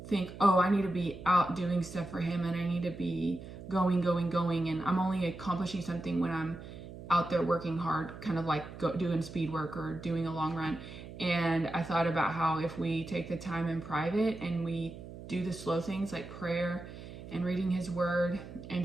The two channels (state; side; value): noise; right; hum, 13 dB below the sound